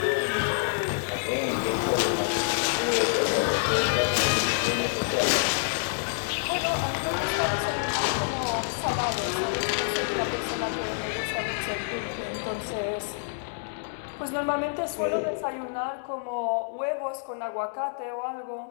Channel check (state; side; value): silent; right; digital silence